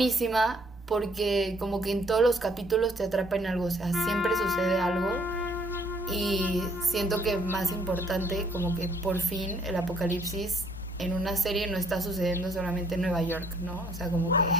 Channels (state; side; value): normal; both; correlation 0.64